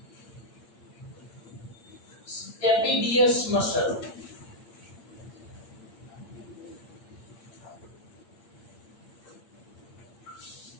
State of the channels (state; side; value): late; right; 8.8 ms